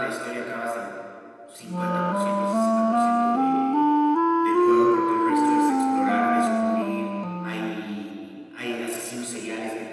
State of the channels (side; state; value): both; identical; correlation 1.00